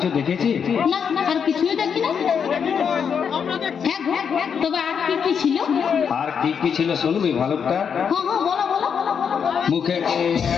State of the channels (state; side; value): quieter; right; 7.0 dB